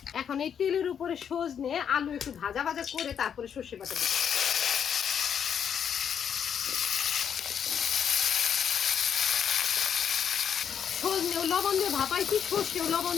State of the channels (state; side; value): quieter; right; 8.0 dB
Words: এখন এই তেলের উপরে সজনে আলু একটু ভাজা ভাজা করে তারপরে সর্ষে বাটা দিই। সজনেও লবণ দিয়ে ভাপাইছি, সর্ষেও লবণ